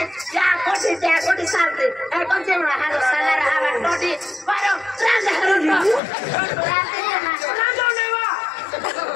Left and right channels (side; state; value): right; drops out; at 6.0 s